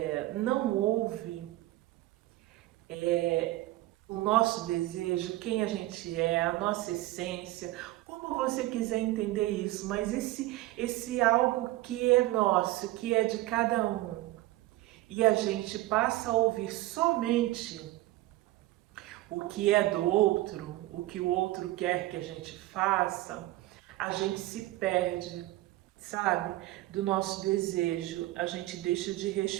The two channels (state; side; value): quieter; left; 17.5 dB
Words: não ouve o nosso desejo, quem a gente é, a nossa essência, como você quiser entender isso, mas esse algo que é nosso, que é de cada um, e a gente passa a ouvir somente o que é do outro, o que o outro quer que a gente faça, a gente se perde, sabe, do nosso desejo, a gente deixa de